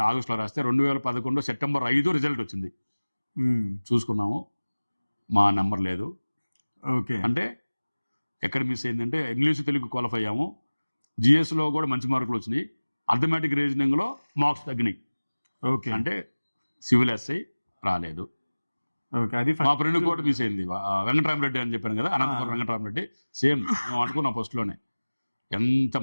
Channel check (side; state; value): both; inverted; correlation -1.00